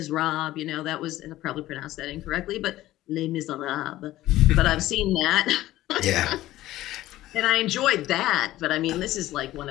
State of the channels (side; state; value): right; quieter; 15.4 dB